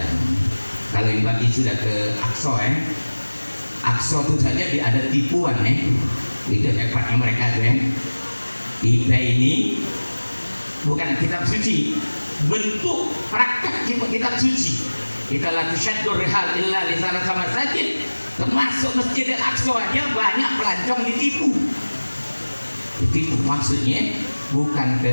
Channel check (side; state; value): both; inverted; correlation -1.00